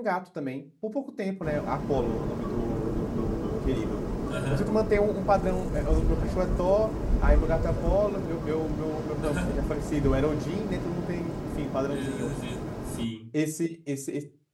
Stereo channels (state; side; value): identical; both; correlation 1.00